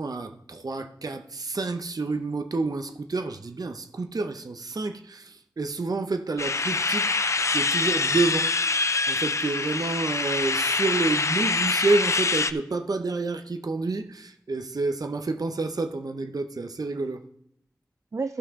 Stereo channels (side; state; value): both; normal; correlation 0.31